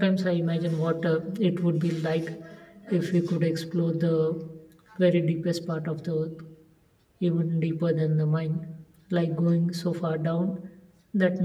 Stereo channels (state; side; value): identical; both; correlation 1.00